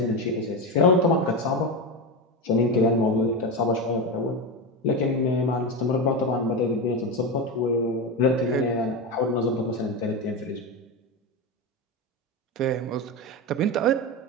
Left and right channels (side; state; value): both; normal; correlation 0.17